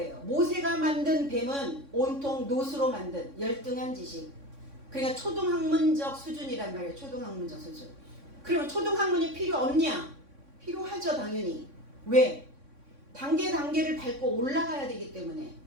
모세가 만든 뱀은 온통 놋으로 만든 열등한 지식. 그러니까 초등학문적 수준이란 말이에요. 초등학문적 수준. 그러면 초등학문이 필요 없냐? 필요하죠, 당연히. 왜? 단계를 밟고 올라가야 되기 때문에.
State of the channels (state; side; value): late; left; 3.6 ms